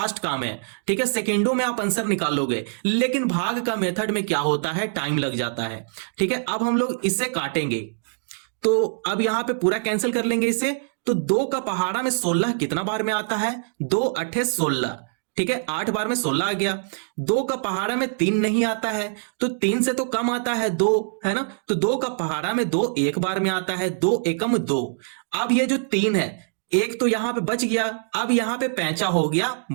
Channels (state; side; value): silent; left; digital silence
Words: काम है। ठीक है, सेकंडों में आप आंसर निकाल लोगे, लेकिन भाग का मेथड में क्या होता है, टाइम लग जाता है। ठीक है, अब हम लोग इसे काटेंगे, तो अब यहां पे पूरा कैंसिल कर लेंगे इसे। तो 2 का पहाड़ा में 16 कितना बार में आता है, 2 8 16। ठीक है, 8 बार में 16 आ गया। 2 का पहाड़ा में 3 नहीं आता है, तो 3 से तो कम आता है 2, है ना। तो 2 का पहाड़ा में 2 एक बार में आता है, 2 एकम 2। अब ये जो 3 है, एक तो यहां पे बच गया, अब यहां पे पैंचा हो गया,